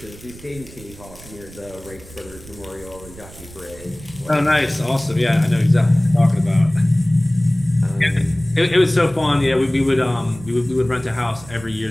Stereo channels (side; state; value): right; noise; rumble, 19 dB below the sound